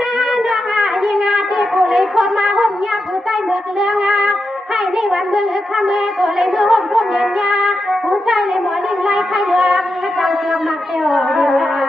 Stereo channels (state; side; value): normal; both; correlation 0.88